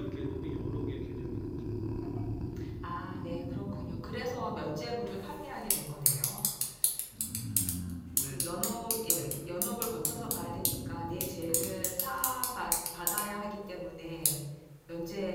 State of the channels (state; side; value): identical; both; correlation 1.00